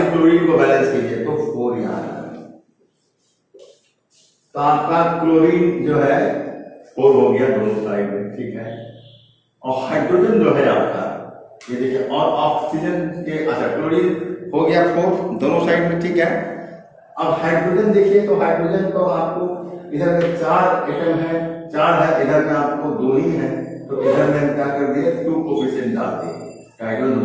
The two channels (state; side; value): identical; both; correlation 1.00